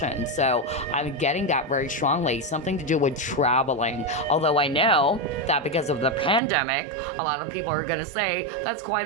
So I'm getting that very strongly, something to do with traveling. Although I know that because of the pandemic, a lot of people are going to say that's quite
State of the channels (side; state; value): left; drops out; at 6.4 s